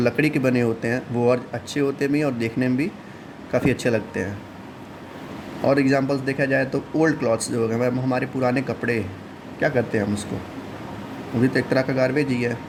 के बने होते हैं वो और अच्छे होते भी हैं और देखने में भी काफ़ी अच्छे लगते हैं। और एग्जांपल्स देखा जाए तो ओल्ड क्लॉथ्स जो हो गए, हमारे पुराने कपड़े, क्या करते हैं हम उसको, वो भी तो एक तरह का गार्बेज ही है,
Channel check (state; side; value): identical; both; correlation 1.00